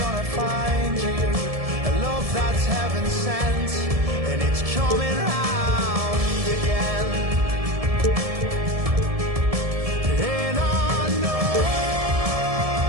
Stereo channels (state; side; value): late; left; 1.7 ms